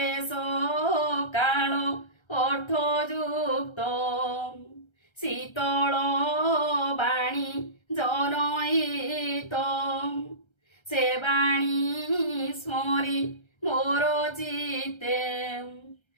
କାଳ ଅର୍ଥଯୁକ୍ତ ଶୀତଳ ବାଣୀ ଜନହିତ। ସେ ବାଣୀ ସ୍ମରି ମୋର ଚିତ୍ତେ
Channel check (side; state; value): right; late; 1.3 ms